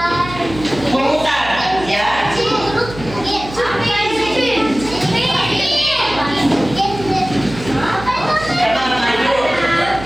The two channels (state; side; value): noise; right; hum, 13 dB below the sound